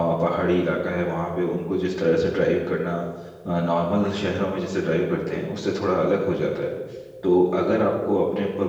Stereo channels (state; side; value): identical; both; correlation 1.00